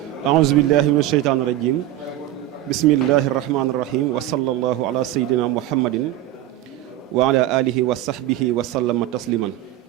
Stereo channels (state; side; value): quieter; left; 13.9 dB